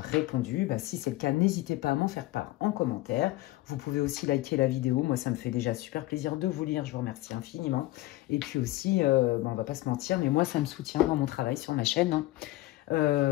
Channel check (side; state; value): right; quieter; 17.7 dB